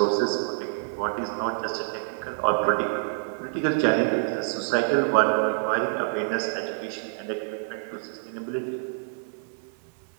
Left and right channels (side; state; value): left; silent; digital silence